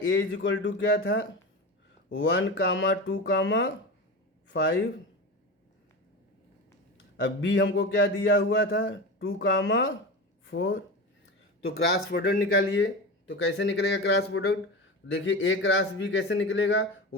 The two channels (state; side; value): normal; both; correlation 0.25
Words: A इज इक्वल टू क्या था? 1, 2, 5. अब B हमको क्या दिया हुआ था? 2, 4। तो क्रॉस प्रोडक्ट निकालिए। तो कैसे निकलेगा क्रॉस प्रोडक्ट? देखिए ए क्रॉस बी कैसे निकलेगा?